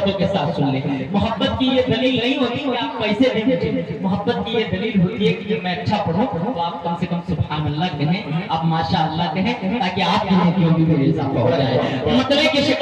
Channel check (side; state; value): both; identical; correlation 1.00